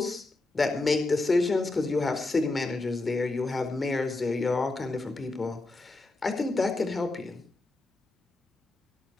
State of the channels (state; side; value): quieter; right; 3.1 dB